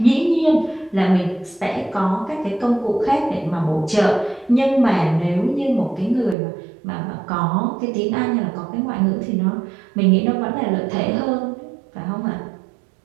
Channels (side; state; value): left; drops out; at 6.4 s